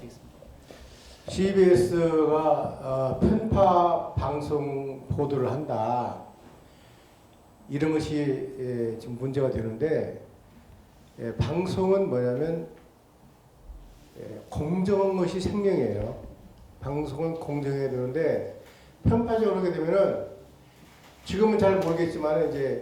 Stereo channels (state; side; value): identical; both; correlation 1.00